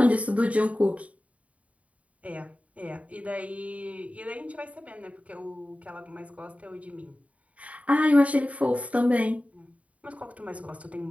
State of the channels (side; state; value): left; late; 0.067 ms